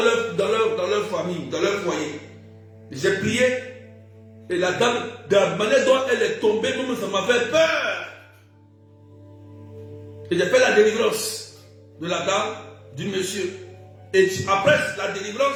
leur famille, dans leur foyer. J'ai prié et la dame, de la manière dont elle est tombée, même ça m'a fait peur. Et j'ai fait la délivrance de la dame, du monsieur. Et après la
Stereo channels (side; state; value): both; identical; correlation 1.00